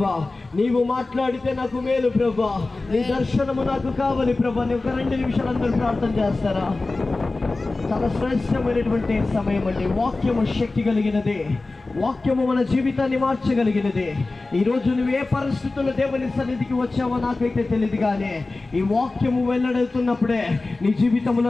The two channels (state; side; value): quieter; right; 3.3 dB